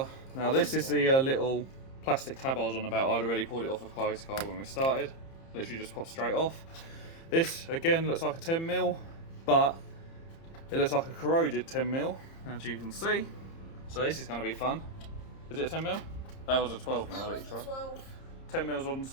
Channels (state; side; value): late; right; 30 ms